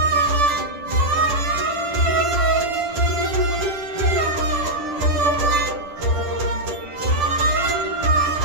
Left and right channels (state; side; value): late; left; 10 ms